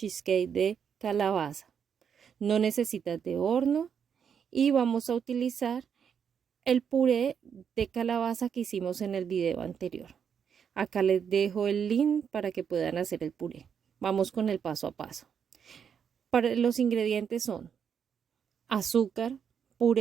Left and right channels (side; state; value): left; quieter; 7.5 dB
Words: de calabaza. No necesitas de horno y vamos a utilizar el puré de calabaza que hicimos en el video anterior. Acá les dejo el link para que puedan hacer el puré. Vamos con el paso a paso. Para los ingredientes son azúcar,